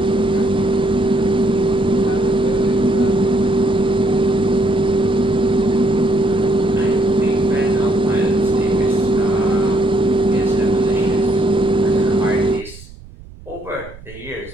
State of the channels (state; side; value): noise; right; rumble, 19 dB below the sound